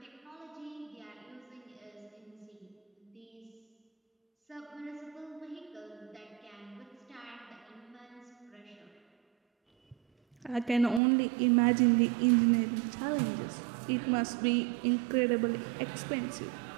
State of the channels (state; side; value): drops out; left; at 11.0 s